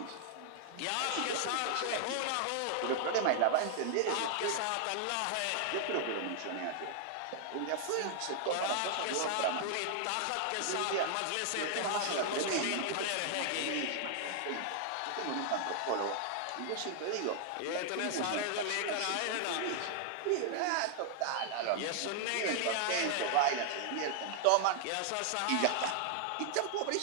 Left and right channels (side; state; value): both; different; correlation 0.00